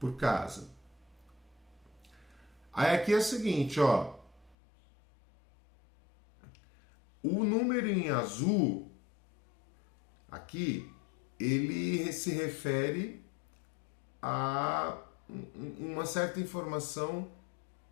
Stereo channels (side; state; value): right; drops out; at 4.5 s